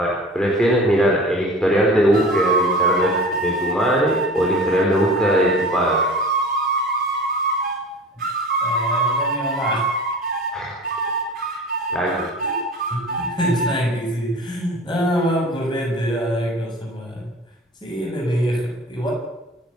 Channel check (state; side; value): normal; both; correlation 0.38